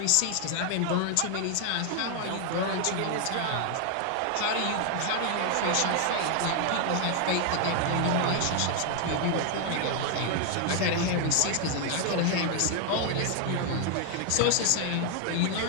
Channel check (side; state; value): both; different; correlation 0.00